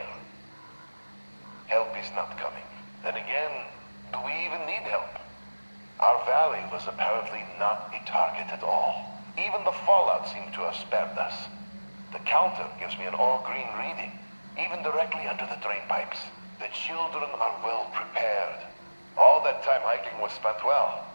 Help is not coming. Then again, do we even need help? Our valley was apparently not a target at all. Even the fallout seemed to have spared us. The counter gives me an all-green reading, even directly under the drain pipes. The children are well prepared. All that time hiking was spent well.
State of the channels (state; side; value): inverted; both; correlation -1.00